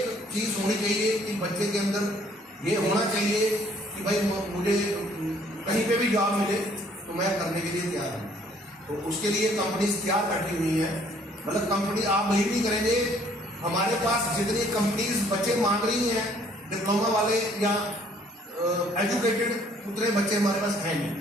चीज़ होनी चाहिए कि बच्चे के अंदर ये होना चाहिए कि भाई मुझे कहीं पे भी जॉब मिले तो मैं करने के लिए तैयार हूँ। तो उसके लिए कंपनीज तैयार बैठी हुई हैं, मतलब कंपनी आप बिलीव नहीं करेंगे हमारे पास जितनी कंपनीज बच्चे मांग रही हैं डिप्लोमा वाले या एजुकेटेड, उतने बच्चे हमारे पास हैं नहीं।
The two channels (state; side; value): normal; both; correlation 0.61